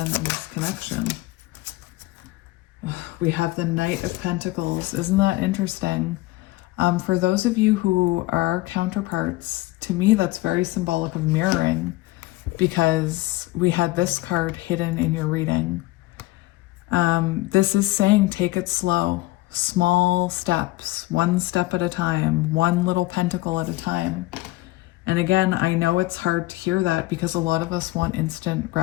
and this connection? We have the Knight of Pentacles. Isn't that interesting? For those of you who are counterparts, to me, that's very symbolic of mirroring, because we had this card hidden in your reading. This is saying take it slow. Small steps, one step at a time, one little pentacle at a time. And again, I know it's hard to hear that because a lot of us want instant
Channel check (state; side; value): quieter; right; 19.2 dB